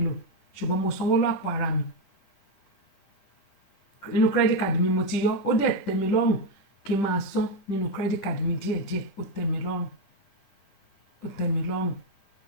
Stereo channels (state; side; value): late; right; 10 ms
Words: loan ṣùgbọ́n mo sanwó lápò ara mi nínú credit card mi mo ti yọ ó dẹ̀ tẹ́ mi lọ́rùn kí n máa san nínú credit card mi díẹ̀díẹ̀ ó tẹ́ mi lọ́rùn